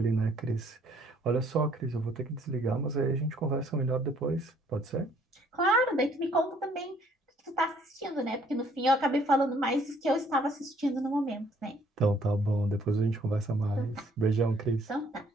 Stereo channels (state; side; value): normal; both; correlation 0.62